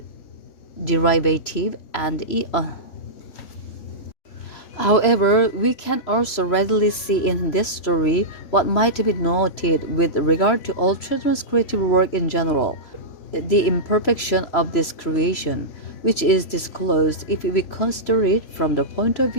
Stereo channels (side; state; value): right; late; 3.0 ms